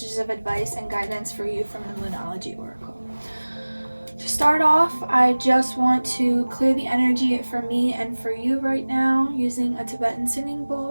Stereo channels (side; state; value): both; inverted; correlation -1.00